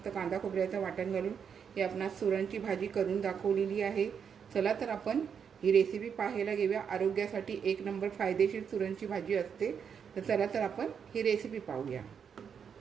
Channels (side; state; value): left; quieter; 7.2 dB